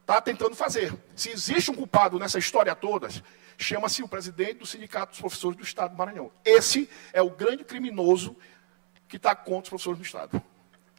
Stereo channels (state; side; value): silent; left; 60 dB below the other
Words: tentando fazer. Se existe um culpado nessa história toda, chama-se o presidente do Sindicato dos Professores do Estado do Maranhão. Esse é o grande criminoso que está contra os professores do Estado.